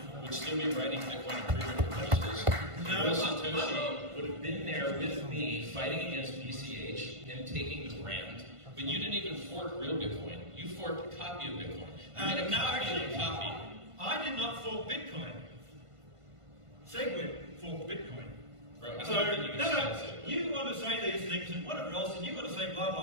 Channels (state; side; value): late; left; 1.5 ms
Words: would still be writing Bitcoin improvement proposals. Real Satoshi would have been there with me fighting against BCH and taking the brand. But you didn't even fork real Bitcoin. You forked a copy of Bitcoin. You made a copy of a copy. I did not fork Bitcoin. Segwit forked Bitcoin. Bro, So, you want to say these things and whatever else, and you want to say blah,